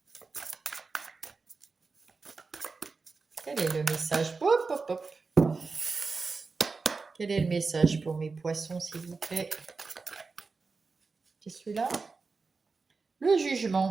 Quel est le message? Hop, hop, hop. Quel est le message pour mes poissons, s'il vous plaît? C'est celui-là? Le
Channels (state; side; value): quieter; left; 4.3 dB